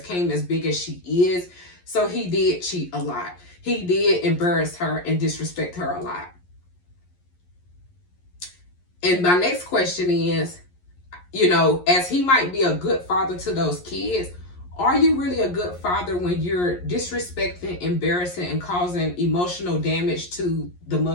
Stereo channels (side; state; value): right; late; 11 ms